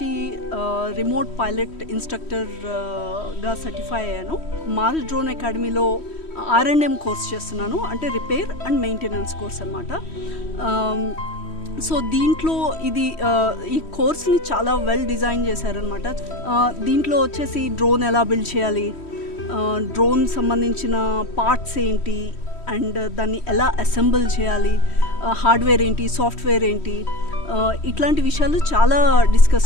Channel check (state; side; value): late; right; 3.1 ms